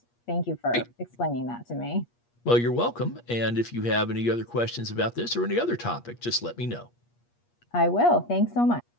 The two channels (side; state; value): right; late; 8.4 ms